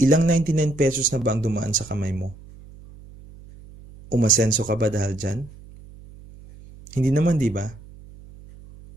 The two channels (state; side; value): noise; right; hum, 20 dB below the sound